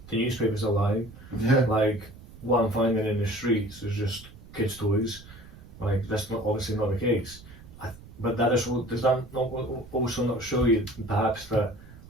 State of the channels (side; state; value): right; noise; rumble, 19 dB below the sound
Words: the newspapers are lying. Yeah. Like, what I'm finding in the streets is just kids' toys. Like, that's not obviously not the case. but that is, does that not also not show you perhaps that